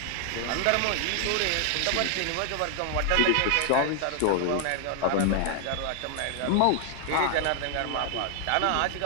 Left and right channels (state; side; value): different; both; correlation 0.00